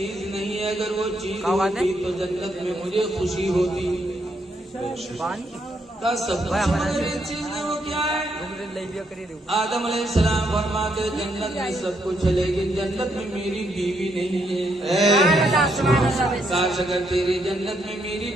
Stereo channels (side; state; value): both; normal; correlation 0.76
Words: नहीं है, अगर वो चीज होती तो जन्नत में मुझे खुशी होती। कहा सब कुछ मगर एक चीज नहीं, वो क्या है? आदम अलैहिस्सलाम फरमाते जन्नत में सब कुछ है लेकिन जन्नत में मेरी बीवी नहीं है। काश अगर तेरी जन्नत में मेरी